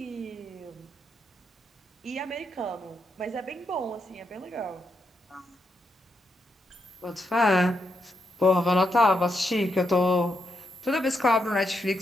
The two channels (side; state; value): both; normal; correlation 0.82